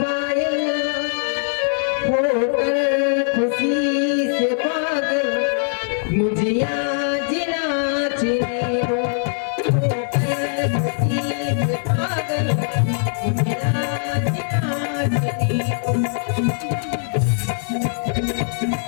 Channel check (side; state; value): right; silent; 65 dB below the other